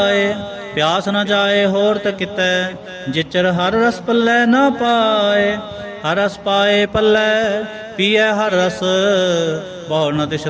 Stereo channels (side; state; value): both; identical; correlation 1.00